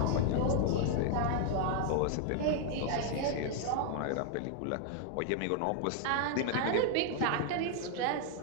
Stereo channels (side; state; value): both; different; correlation 0.00